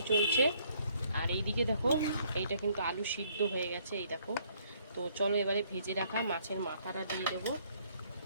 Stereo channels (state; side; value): inverted; both; correlation -0.65